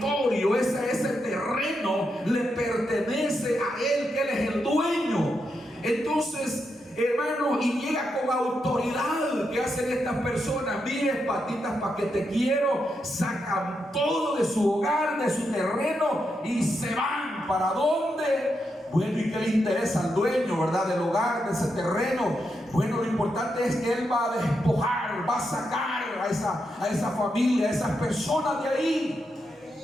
ese terreno le pertenece a él, que él es el dueño. Entonces, hermano, y llega con autoridad. ¿Qué hacen estas personas? Mire, patitas, para que te quiero. Sacan todo de su hogar, de su terreno, y se van. ¿Para dónde? Bueno, ¿y qué le interesa al dueño, verdad, del hogar, de ese terreno? Bueno, lo importante es que él va a despojar, va a sacar a esa familia, a esas personas de ahí.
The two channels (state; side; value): normal; both; correlation 0.84